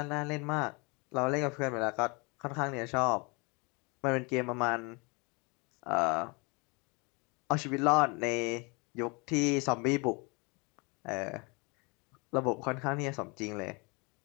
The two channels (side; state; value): right; quieter; 29.7 dB